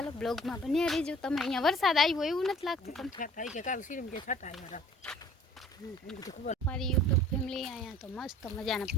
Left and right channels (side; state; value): both; normal; correlation 0.51